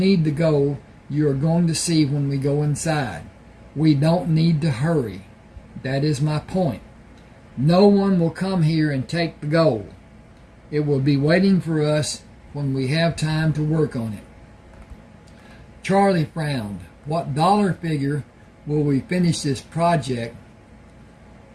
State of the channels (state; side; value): identical; both; correlation 1.00